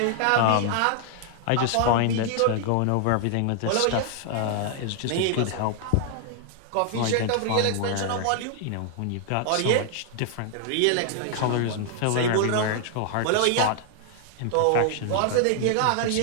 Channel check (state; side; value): different; both; correlation 0.00